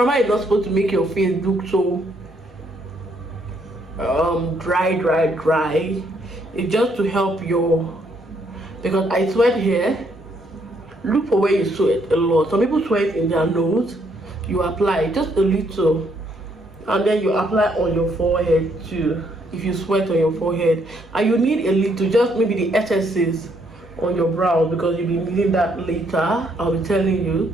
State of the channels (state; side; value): normal; both; correlation 0.71